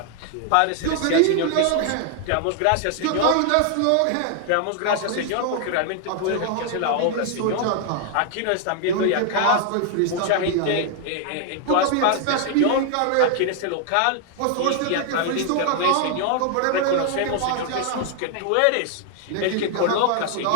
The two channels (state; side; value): different; both; correlation 0.00